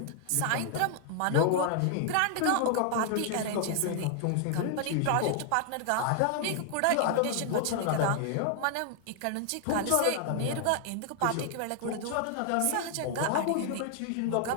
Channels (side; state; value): both; different; correlation 0.00